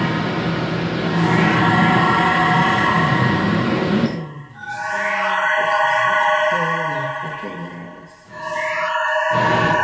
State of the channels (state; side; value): identical; both; correlation 1.00